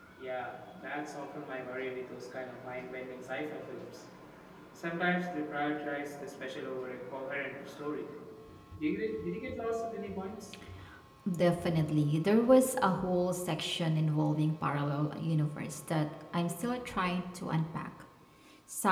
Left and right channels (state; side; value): identical; both; correlation 1.00